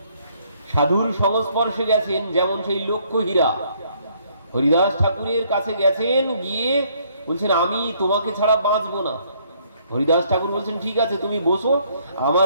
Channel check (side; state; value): both; inverted; correlation -0.66